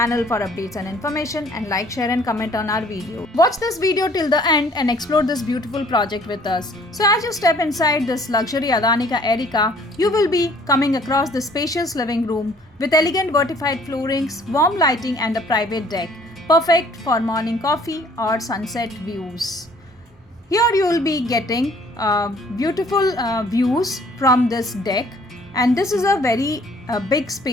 for updates and information, and like, share and comment on our video. Watch this video till the end and explore this beautiful project with us. So as you step inside this luxury Adani Erica, you will be coming across the spacious living room with elegant vertified floorings, warm lighting and a private deck, perfect for morning coffee or sunset views. Here you will be getting beautiful views from this deck, and this is a very big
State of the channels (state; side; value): normal; both; correlation 0.57